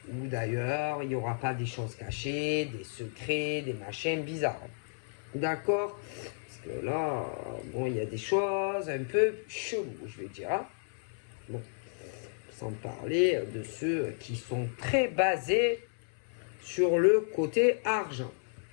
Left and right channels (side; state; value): right; silent; 56 dB below the other